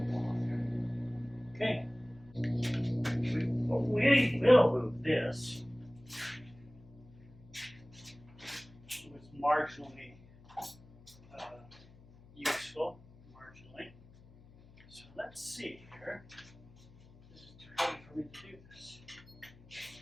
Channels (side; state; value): left; noise; hum, 23 dB below the sound